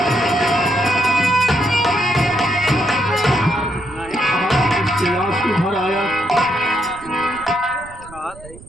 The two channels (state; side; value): noise; right; rumble, 19 dB below the sound